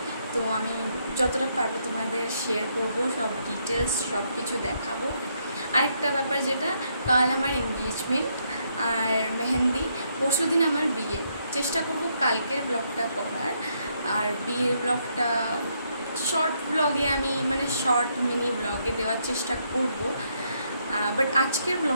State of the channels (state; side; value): inverted; both; correlation -0.75